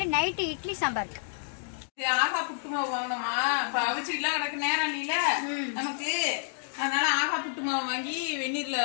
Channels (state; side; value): silent; right; digital silence